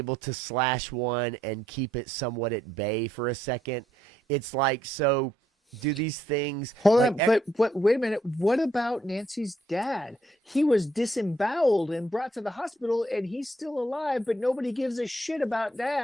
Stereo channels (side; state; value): both; normal; correlation 0.72